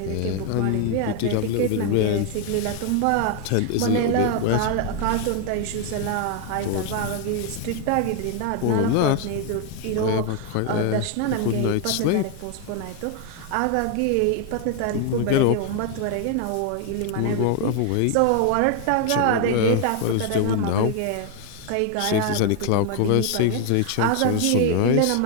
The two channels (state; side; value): different; both; correlation 0.00